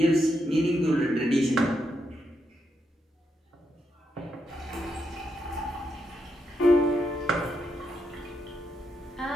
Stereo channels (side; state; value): both; normal; correlation 0.81